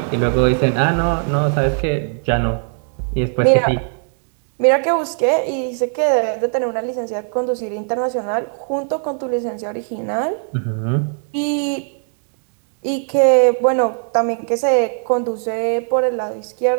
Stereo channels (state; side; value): silent; left; 58 dB below the other